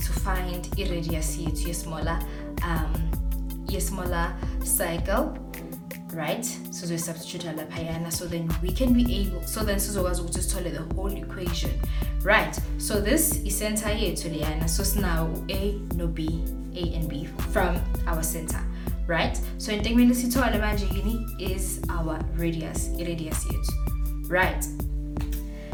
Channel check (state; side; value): identical; both; correlation 1.00